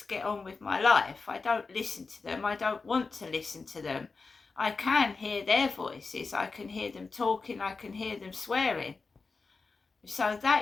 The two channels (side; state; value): right; quieter; 4.3 dB